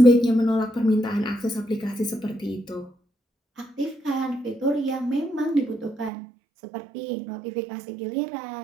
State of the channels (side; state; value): left; drops out; at 6.1 s